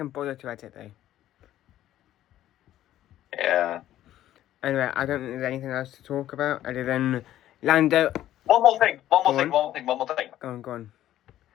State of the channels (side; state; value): right; quieter; 13.0 dB